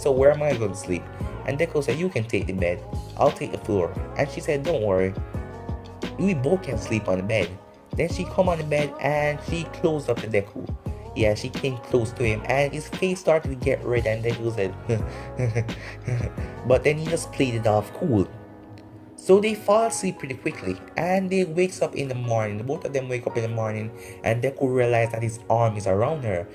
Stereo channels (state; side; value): identical; both; correlation 1.00